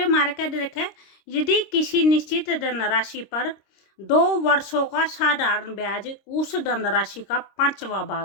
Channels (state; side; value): late; right; 26 ms